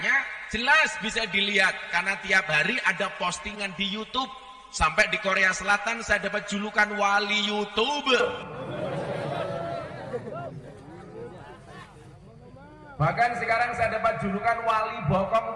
jelas bisa dilihat karena tiap hari ada postingan di YouTube. Sampai di Korea Selatan saya dapat julukan wali YouTube. Bahkan sekarang saya dapat julukan wali bokong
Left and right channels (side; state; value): both; identical; correlation 1.00